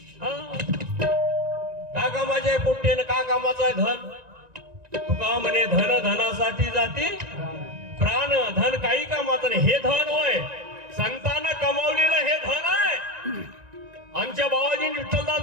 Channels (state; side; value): late; left; 1.9 ms